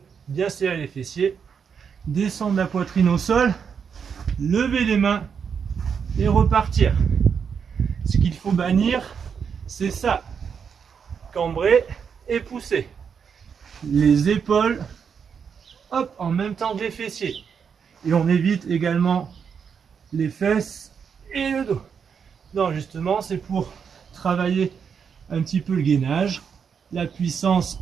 bien serrer les fessiers, descendre la poitrine au sol, lever les mains et repartir. Ce qu'il faut bannir, c'est ça, cambrer et pousser. Les épaules, hop, en même temps que les fessiers. Et on évite également les fesses et le dos. Non, justement, c'est pour travailler un petit peu le gainage, la puissance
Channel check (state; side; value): quieter; left; 6.7 dB